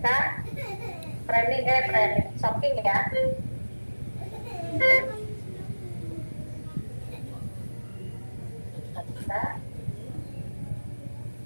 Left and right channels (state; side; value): inverted; both; correlation -1.00